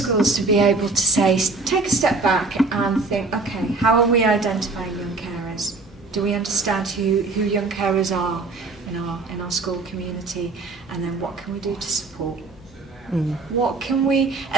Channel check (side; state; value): left; quieter; 3.7 dB